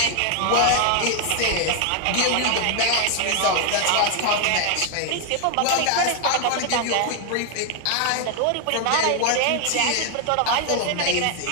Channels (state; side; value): different; both; correlation 0.00